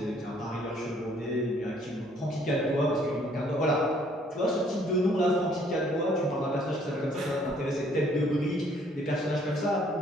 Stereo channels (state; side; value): normal; both; correlation 0.62